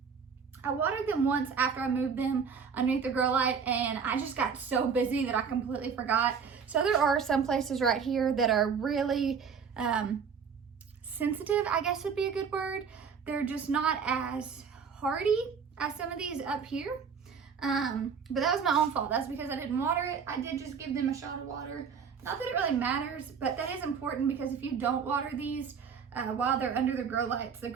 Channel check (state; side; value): quieter; left; 6.3 dB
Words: I watered them once after I moved them underneath the grow light, and I just got so busy that I completely forgot. So there are some places right here that are really sensitive, I guess would be a good word. They're just not as hardy as some of these up here. But that was my own fault. That's because I didn't water it. I did just give them a shot of water. Not that it really matters, but that is important, because if you don't water these while they're under the grow lights